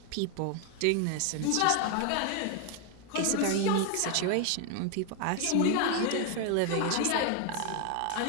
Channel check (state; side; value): different; both; correlation 0.01